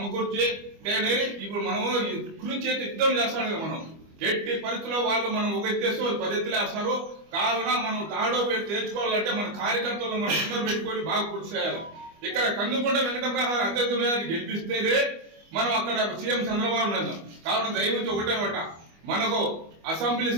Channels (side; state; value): left; late; 25 ms